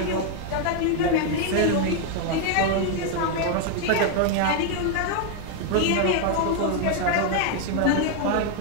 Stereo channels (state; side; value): different; both; correlation 0.00